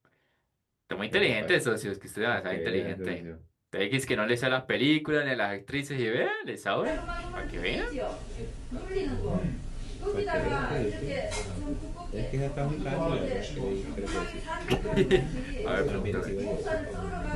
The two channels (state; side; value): identical; both; correlation 1.00